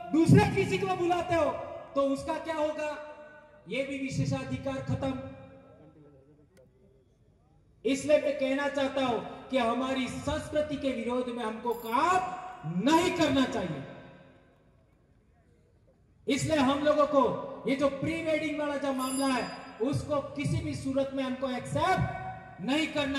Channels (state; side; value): identical; both; correlation 1.00